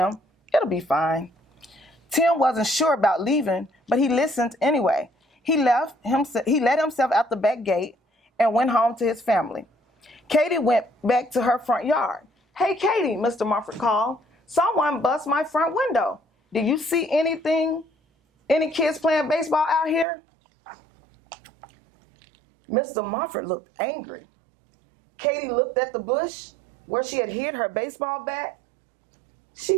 It'll be fine." Tim wasn't sure about leaving, but he listened anyway. He let himself out the back gate and went home to his family. Katie went back to her front yard. "Hey, Katie," Mr. Mumford called. "Someone bust my front window. Do you see anything? Any kids playing baseball out here?" Mr. Mumford looked angry. Katie looked at the bush where she had hid her baseball bat. She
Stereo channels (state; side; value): drops out; left; at 20.1 s